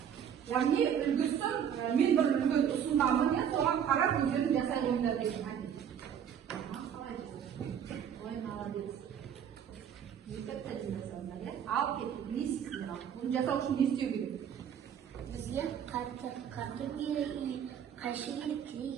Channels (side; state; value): left; quieter; 8.6 dB